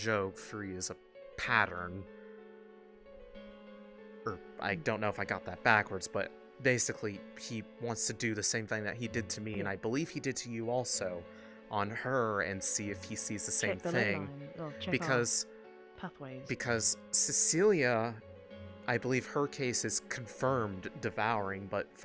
3 is a pattern. Or I don't know if I got that backwards, but basically he wants to do the same thing that he did to me, and I believe he did to you also, on her, and see if he sees the same Check the thing. ley line. Well, check Because our pathways. because Cecilia, I believe her case is confirmed devouring, but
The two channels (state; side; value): identical; both; correlation 1.00